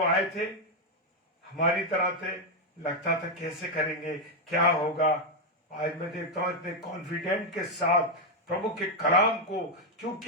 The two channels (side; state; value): both; normal; correlation 0.02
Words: आए थे हमारी तरह थे, लगता था कैसे करेंगे, क्या होगा। आज मैं देखता हूं इतने कॉन्फिडेंट के साथ प्रभु के कलाम को,